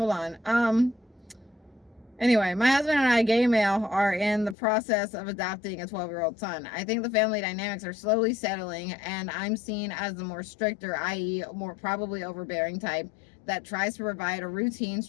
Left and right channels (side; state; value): right; drops out; at 4.5 s